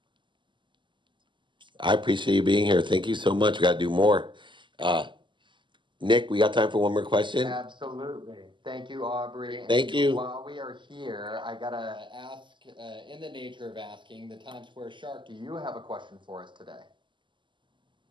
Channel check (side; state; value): left; late; 0.24 ms